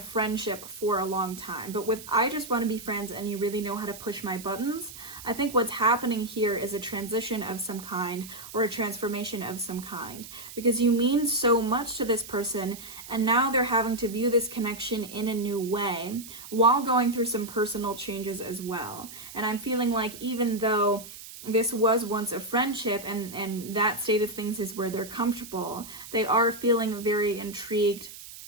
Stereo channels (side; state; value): right; noise; hiss, 14 dB below the sound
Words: for a long time. But with I just want to be friends and you really know how to push my buttons, I think what's happening here is a transition of some kind, or a transformation of some kind. Because you mean so much to this person, and now they're having to view this connection in a new way, while going through some personal changes as well. And I'm feeling like even though this was once a friendship and that state of things is where they're comfortable, they are feeling very intrigued